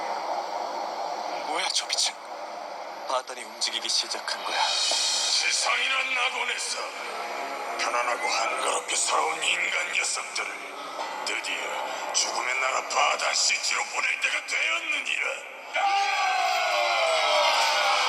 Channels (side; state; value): both; identical; correlation 1.00